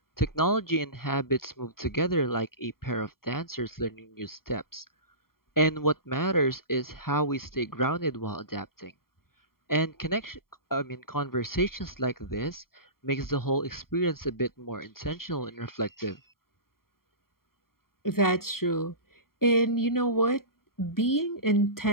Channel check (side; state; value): right; late; 0.93 ms